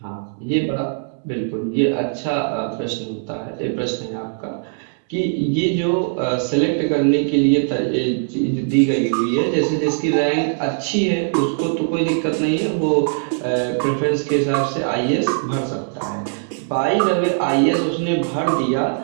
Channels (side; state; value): left; silent; digital silence